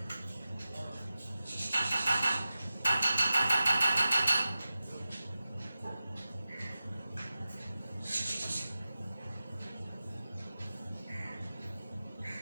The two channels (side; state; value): both; inverted; correlation -0.94